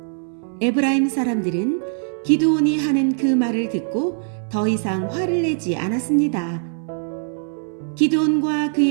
에브라임 사람들은 기드온이 하는 그 말을 듣고 더 이상 화를 내지 않았습니다. 기드온과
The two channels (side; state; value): left; silent; 62 dB below the other